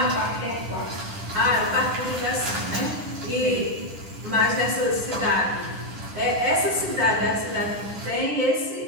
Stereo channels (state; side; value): late; left; 10 ms